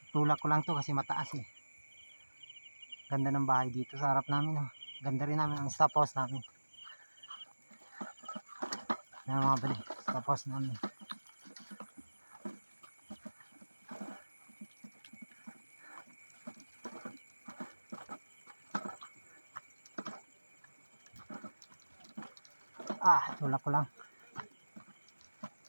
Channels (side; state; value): both; inverted; correlation -1.00